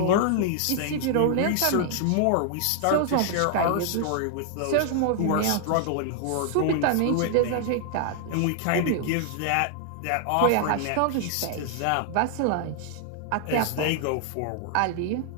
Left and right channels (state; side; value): different; both; correlation 0.00